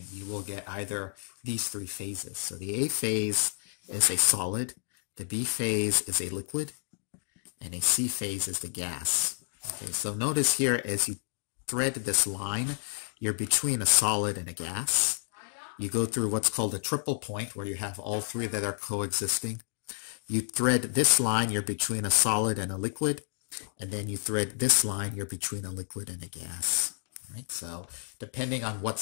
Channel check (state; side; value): silent; right; 58 dB below the other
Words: you will get either these three phases. So the A phase is a solid, the B phase is a liquid, and a C phase is the gas. Okay, so notice here as you thread this line, you're between a solid and a gas. You go through what's called a triple point where you have all three that are coexisting. You thread this line, you're between a solid and a liquid, and then you thread this line, you're between a liquid and a gas. Right? So depending on what